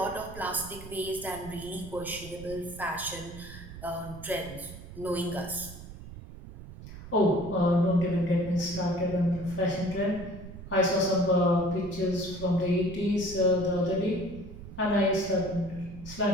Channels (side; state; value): right; noise; rumble, 14 dB below the sound